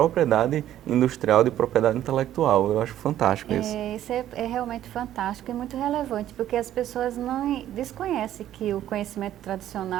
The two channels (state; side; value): quieter; left; 12.1 dB